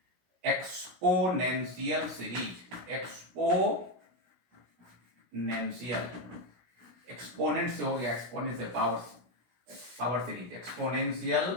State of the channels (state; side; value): late; left; 16 ms